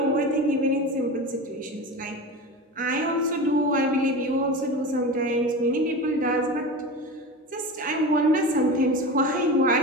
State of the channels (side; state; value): both; normal; correlation 0.28